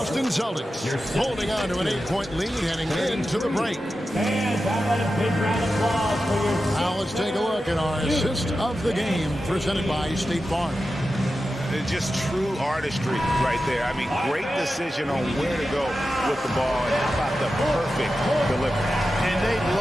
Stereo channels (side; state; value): both; normal; correlation 0.92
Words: Celtics holding on to an 8-point lead heading into the break. Now let's take a look at our assist of the game presented by State Farm. Just true artistry right there. I mean, great decision on where to go with the ball. And how about the perfect delivery? And they'd